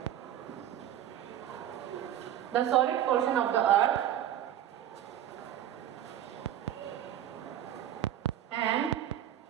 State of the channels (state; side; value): quieter; left; 11.3 dB